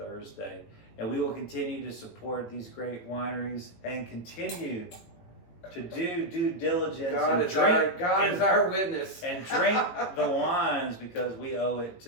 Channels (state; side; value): late; right; 18 ms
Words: And we will continue to support these great wineries and continue to do due diligence. God is our witness. And drink the wines because we owe it to